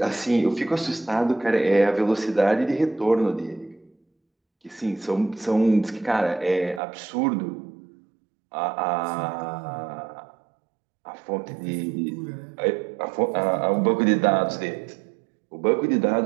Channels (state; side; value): drops out; left; at 6.8 s